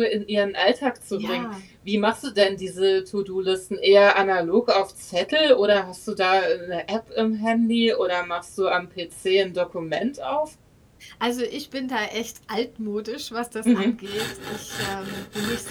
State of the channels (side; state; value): both; identical; correlation 1.00